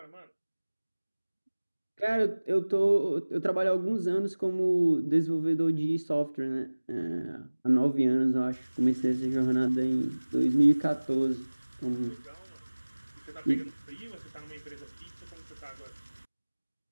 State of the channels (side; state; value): both; inverted; correlation -1.00